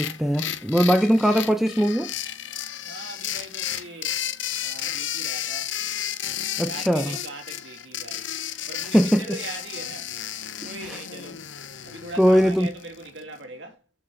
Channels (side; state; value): both; normal; correlation 0.79